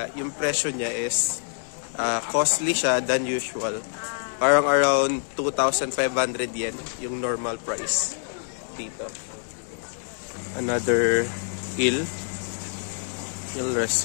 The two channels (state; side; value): silent; right; digital silence